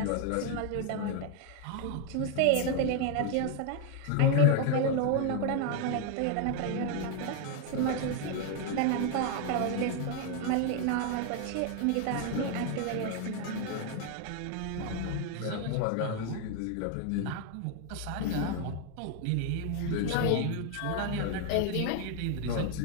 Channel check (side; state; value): both; different; correlation 0.00